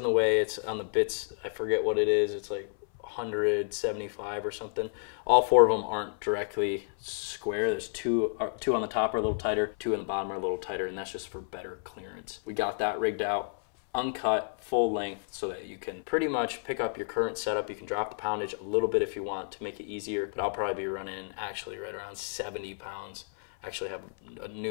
it's on the bits, I forget what it is, it's like 175 or something. All 4 of them aren't directly square. There's two on the top are a little tighter, 2 on the bottom are a little tighter, and that's just for better clearance. We got that rigged out, uncut, full length, so that you can pretty much pick up your current setup. You can drop the poundage a little bit if you want to make it easier, but I'll probably be running actually right around 70 pounds. Actually have a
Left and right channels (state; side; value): silent; right; 57 dB below the other